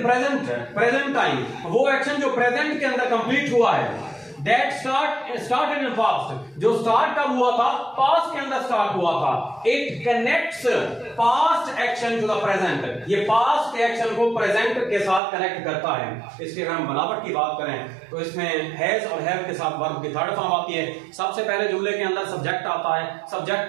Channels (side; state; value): left; drops out; at 15.2 s